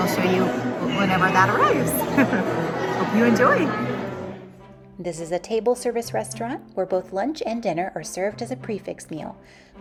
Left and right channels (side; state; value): both; identical; correlation 1.00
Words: I'll show you whenever that arrives. Hope you enjoy. This is a table service restaurant where both lunch and dinner are served as a prefix meal